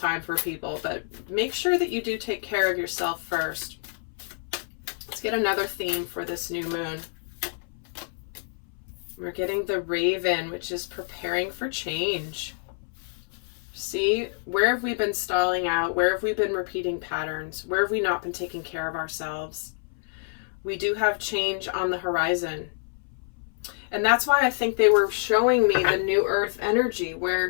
for people, but make sure that you do take care of yourself first. Let's get another theme for this new moon. We're getting the Raven, which is preparing for change. See, where have we been stalling out? Where have we been repeating patterns? Where have we not been taking care of ourselves? We do have change on the horizon. And that's why I think they were showing me the New Earth energy,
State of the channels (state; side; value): silent; right; 60 dB below the other